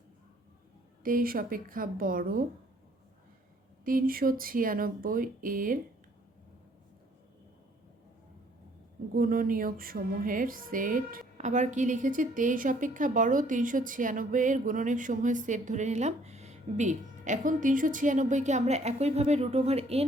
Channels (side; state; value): both; normal; correlation 0.61